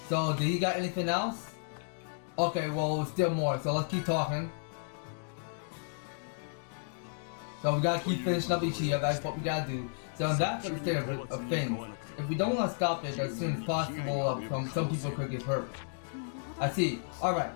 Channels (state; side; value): silent; right; digital silence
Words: So did he got anything else? Okay, well still more, so let's keep talking. So we gotta keep finishing up Ichiya, that's what we gotta do. So that's the state of things. If we don't want to stop it as soon as possible, some people could get hurt. I see. Alright,